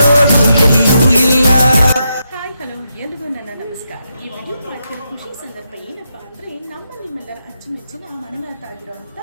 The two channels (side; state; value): both; inverted; correlation -0.83